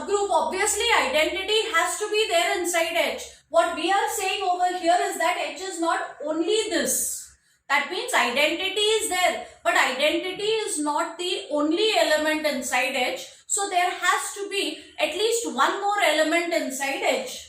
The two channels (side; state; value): both; identical; correlation 1.00